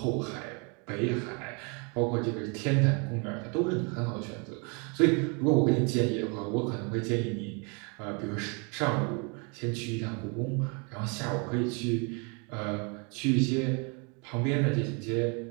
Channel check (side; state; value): left; quieter; 33.6 dB